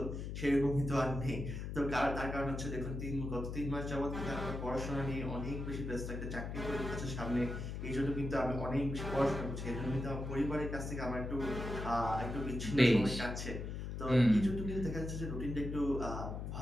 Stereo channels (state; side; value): noise; left; hum, 5 dB below the sound